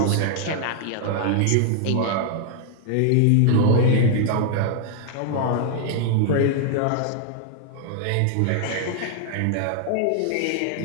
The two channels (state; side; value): different; both; correlation 0.00